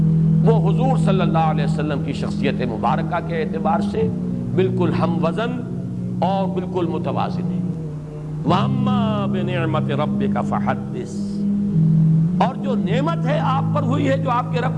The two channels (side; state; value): both; identical; correlation 1.00